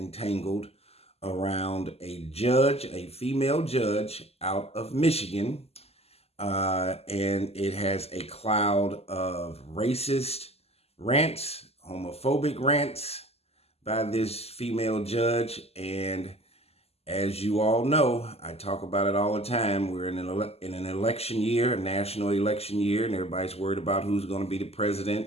around a judge, a female judge out of Michigan. And it has a cloud of racist rants, homophobic rants by this female judge. And as you all know, I talk about it all the time. We're in an election year, a national election year, and everybody's worried about who's going to be the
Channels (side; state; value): right; late; 0.29 ms